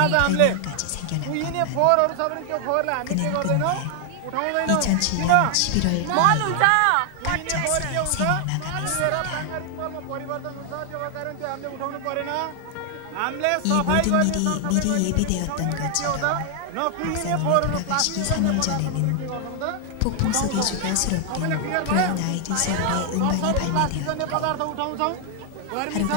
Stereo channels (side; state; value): both; different; correlation 0.00